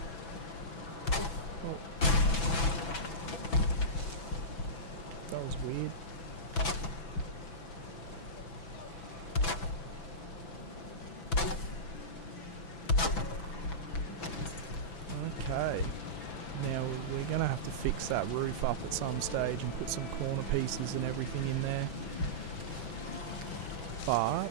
That was weird. Okay. Now we're going to have to fix that roof up at some stage and put some corner pieces and everything in there. But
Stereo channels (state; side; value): late; right; 6.0 ms